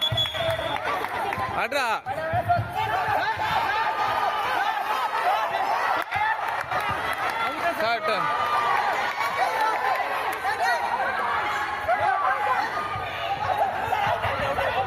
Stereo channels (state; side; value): identical; both; correlation 1.00